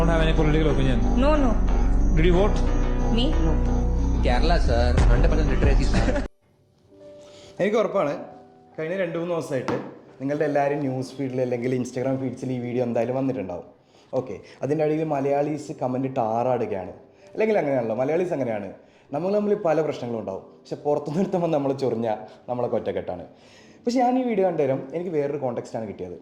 have any political opinion. No. Did you vote? Me? No. Kerala, sir. 100% literacy, sir. എനിക്ക് ഉറപ്പാണ് കഴിഞ്ഞ 2-3 ദിവസമായിട്ട് നിങ്ങളുടെ എല്ലാവരും ന്യൂസ് ഫീഡിൽ അല്ലെങ്കിൽ ഇൻസ്റ്റാഗ്രാം ഫീഡ്സിൽ ഈ വീഡിയോ എന്തായാലും വന്നിട്ടുണ്ടാവും. ഓക്കെ, അതിൻ്റെ അടിയിൽ മലയാളീസ് കമൻറ്റ് ഇട്ട് ആറാടുകയാണ്. അല്ലെങ്കിൽ അങ്ങനെയാണല്ലോ, മലയാളീസ് അങ്ങനെയാണ്. നമ്മൾ പല പ്രശ്നങ്ങളും ഉണ്ടാവും, പക്ഷെ പുറത്തു നിർത്തുമ്പോൾ നമ്മൾ ചൊറിഞ്ഞാൽ നമ്മളൊക്കെ ഒറ്റക്കെട്ടാണ്. പക്ഷെ ഞാൻ ഈ വീഡിയോ കണ്ടുതരാം, എനിക്ക് വേറൊരു കോണ്ടെക്സ്റ്റാണ് കിട്ടിയത്.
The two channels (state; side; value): identical; both; correlation 1.00